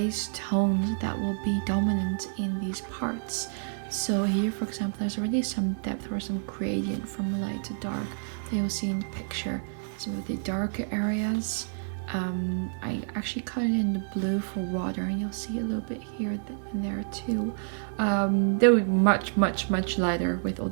tones that will be dominant in these parts. So here, for example, there's already some depth or some gradient from light to dark that you'll see in the picture. Some of the darker areas. I actually colored in the blue for water, and you'll see a little bit here and there too. They'll be much lighter with all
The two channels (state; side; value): silent; left; digital silence